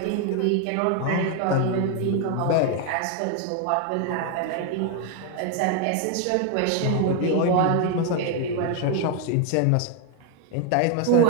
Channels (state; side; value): different; both; correlation 0.01